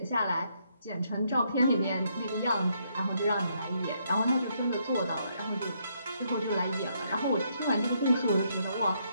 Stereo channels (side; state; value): both; inverted; correlation -0.74